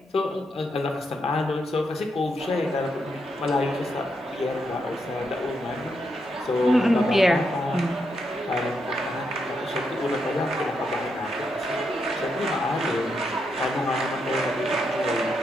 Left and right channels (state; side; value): normal; both; correlation 0.81